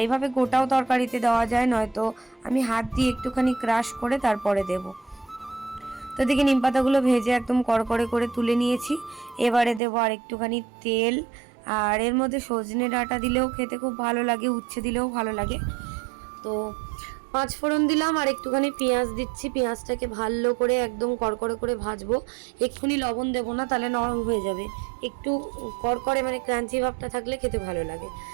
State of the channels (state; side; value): drops out; left; at 9.8 s